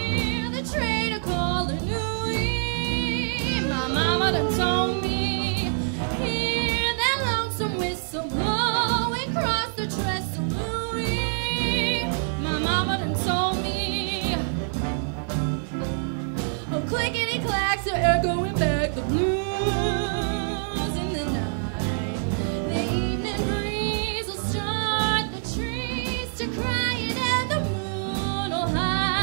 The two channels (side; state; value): left; silent; digital silence